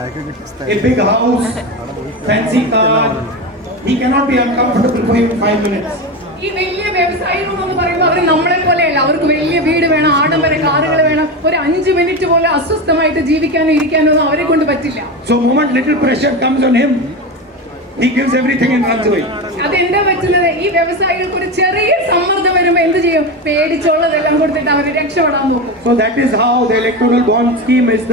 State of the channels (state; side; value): normal; both; correlation 0.20